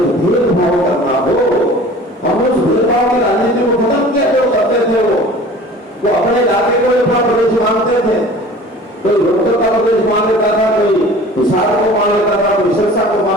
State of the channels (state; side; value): normal; both; correlation 0.44